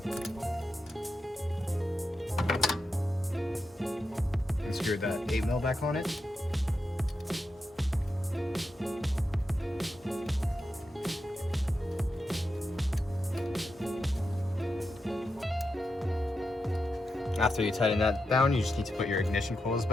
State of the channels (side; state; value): both; normal; correlation 0.87